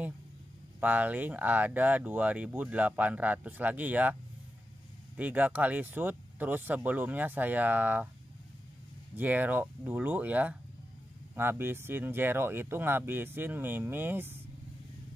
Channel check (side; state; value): both; normal; correlation 0.89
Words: paling ada 2800 lagi ya. 3 kali shoot, terus sebelumnya saya zero dulu ya. Ngabisin zero itu ngabisin mimis